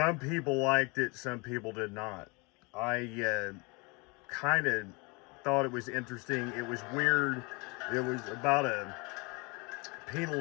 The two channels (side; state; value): right; quieter; 28.8 dB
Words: people liked it, some people did not. I kind of thought it was interesting. It was weird. It was about a